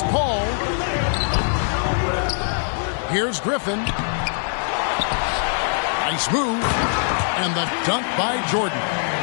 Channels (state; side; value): silent; right; 64 dB below the other